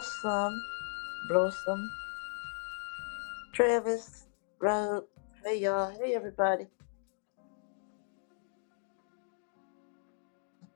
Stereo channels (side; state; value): right; silent; digital silence